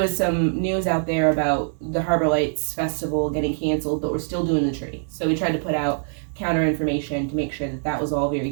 some news out there about the Harbor Lights Festival getting canceled, but we're still doing the tree. So we tried to put out counter information to make sure that was all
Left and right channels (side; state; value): left; silent; digital silence